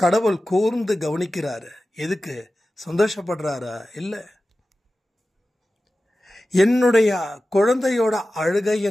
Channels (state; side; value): normal; both; correlation 0.95